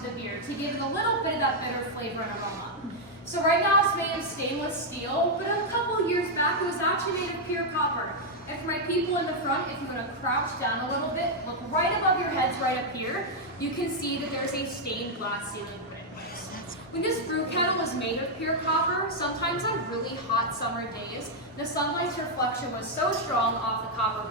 beer to give it a little bit of that bitter flavor and aroma. So right now it's made of stainless steel, but a couple years back it was actually made of pure copper. And for my people in the front, if you want to crouch down a little bit, look right above your heads right up here, you can see that there's a stained glass ceiling put in place. When this brew kettle was made of pure copper, sometimes on really hot summer days, the sunlight's reflection was so strong off the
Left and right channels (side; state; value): both; normal; correlation -0.02